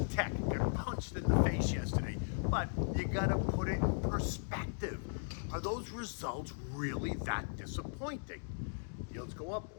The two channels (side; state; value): right; silent; digital silence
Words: Tech got punched in the face yesterday, but you gotta put it in perspective. Are those results really that disappointing? Yields go up,